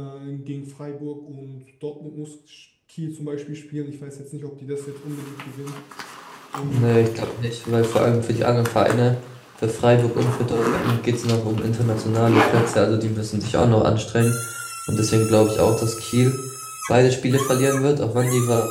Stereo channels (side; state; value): both; identical; correlation 1.00